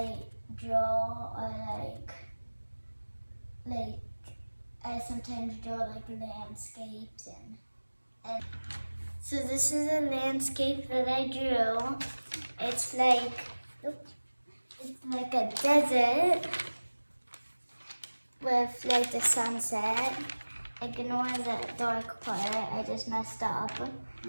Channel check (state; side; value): inverted; both; correlation -1.00